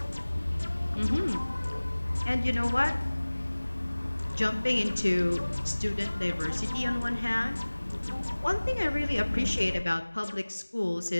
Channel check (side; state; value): both; inverted; correlation -1.00